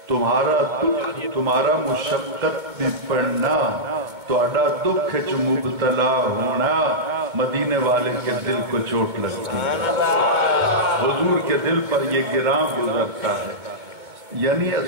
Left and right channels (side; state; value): left; late; 2.2 ms